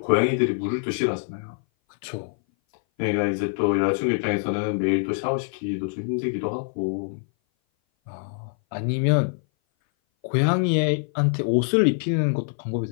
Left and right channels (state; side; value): silent; right; 58 dB below the other